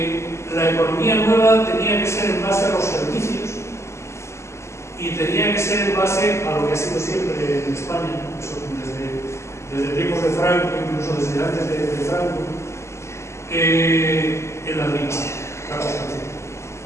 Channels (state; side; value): late; right; 0.13 ms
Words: la economía nueva tenía que ser en base a los servicios y tenía que ser en base a lo que ha sido siempre en España, desde tiempos de Franco, incluso desde antes de Franco, en la agricultura, la construcción.